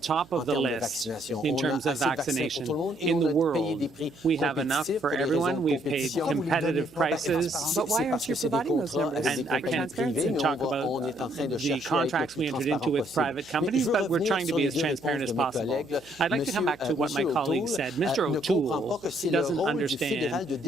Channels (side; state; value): right; noise; hum, 25 dB below the sound